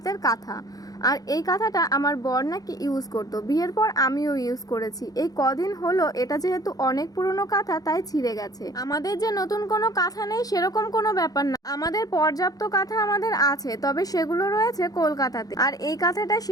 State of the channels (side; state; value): right; late; 0.18 ms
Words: কাঁথা, আর এই কাঁথাটা আমার বর নাকি ইউজ করতো। বিয়ের পর আমিও ইউজ করেছি। এই কদিন হলো এটা যেহেতু অনেক পুরনো কাঁথা তাই ছিঁড়ে গেছে। আমাদের যে নতুন কোনো কাঁথা নেই সেরকম কোনো ব্যাপার না, আমাদের পর্যাপ্ত কাঁথা আমাদের আছে, তবে সেগুলো রয়েছে কলকাতাতে। আর এই কাঁথাটা